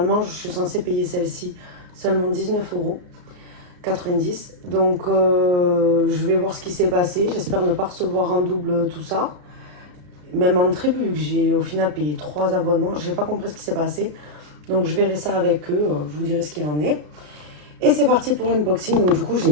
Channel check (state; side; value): late; left; 34 ms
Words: je suis censée payer celle-ci seulement 19,90 €. Donc je vais voir ce qui s'est passé. J'espère ne pas recevoir en double tout ça. Même en triple, vu que j'ai au final payé 3 abonnements. Je n'ai pas compris ce qui s'est passé. Donc je verrai ça avec eux. Je vous dirai ce qu'il en est. Et c'est parti pour l'unboxing. Donc du coup, j'ai